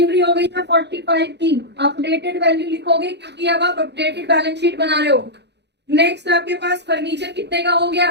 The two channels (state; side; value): late; left; 0.50 ms